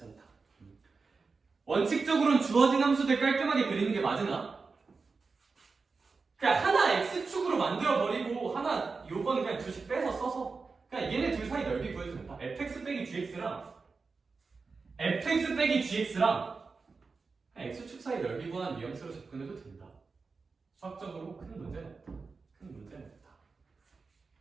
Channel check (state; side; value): quieter; left; 4.4 dB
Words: 원칙적으로는 주어진 함수들 깔끔하게 그리는 게 맞으나 그냥 하나 x축으로 만들어버리고 하나 요건 그냥 둘씩 빼서 써서 그냥 얘네 둘 사이 넓이 구해주면 된다. fx 빼기 gx랑 x축 사이 넓이 구하는 뉘앙스로 접근해도 된다. 수학적으로 큰 문제는 없다. 큰 문제는 없다.